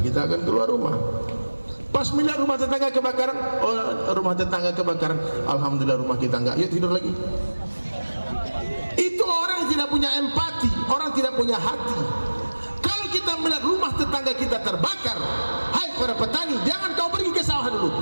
kita akan keluar rumah. Pas melihat rumah tetangga kebakaran, rumah tetangga kebakaran, alhamdulillah rumah kita nggak, yuk tidur lagi. Itu orang yang tidak punya empati, orang tidak punya hati. Kita melihat rumah tetangga kita terbakar, hai para petani, jangan kau pergi ke sawah dulu,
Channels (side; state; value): both; inverted; correlation -1.00